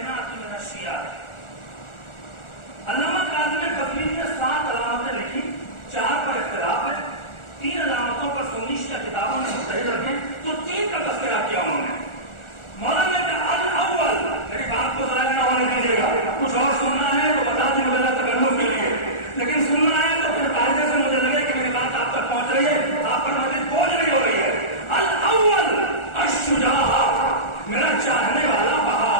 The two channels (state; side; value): late; right; 1.4 ms